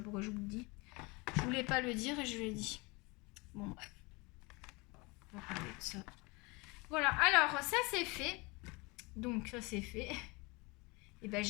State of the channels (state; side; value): quieter; right; 26.5 dB